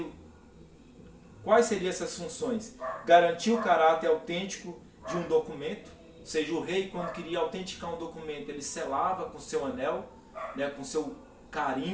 Quais seriam essas funções? Garantir o caráter autêntico de um documento, ou seja, o rei, quando queria autenticar um documento, ele selava com seu anel, com seu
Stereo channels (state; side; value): identical; both; correlation 1.00